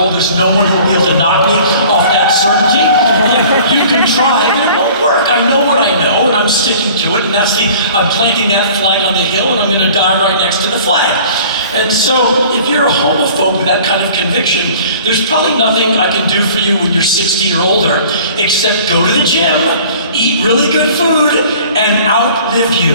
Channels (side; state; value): both; inverted; correlation -0.48